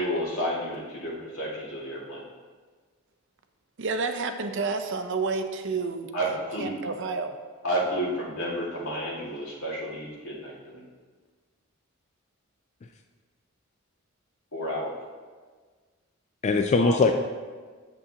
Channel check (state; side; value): normal; both; correlation 0.10